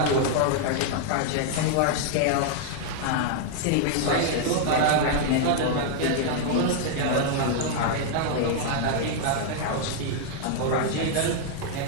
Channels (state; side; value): different; both; correlation 0.00